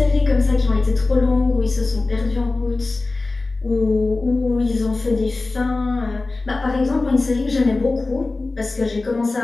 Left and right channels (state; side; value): quieter; right; 3.4 dB